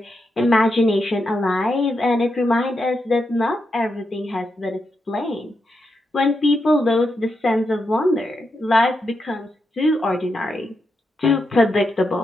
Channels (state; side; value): normal; both; correlation 0.85